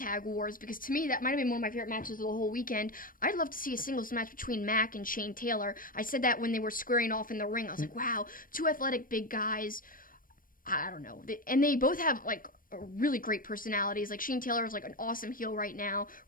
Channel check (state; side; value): late; right; 0.40 ms